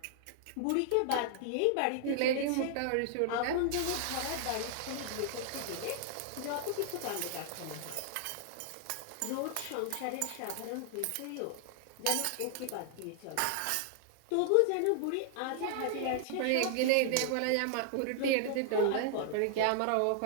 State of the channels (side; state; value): both; different; correlation 0.00